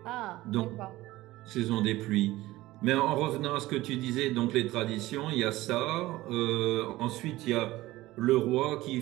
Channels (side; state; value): left; quieter; 17.7 dB